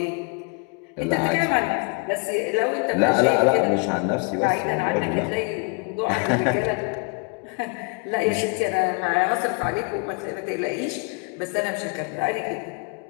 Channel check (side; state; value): right; quieter; 31.7 dB